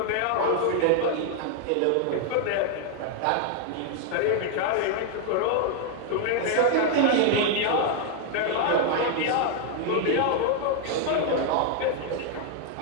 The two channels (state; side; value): different; both; correlation 0.00